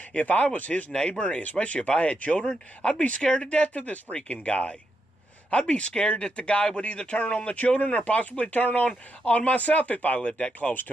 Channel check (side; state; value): both; normal; correlation 0.82